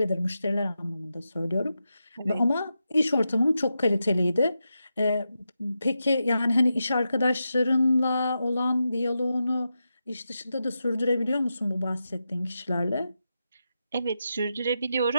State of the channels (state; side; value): inverted; both; correlation -0.88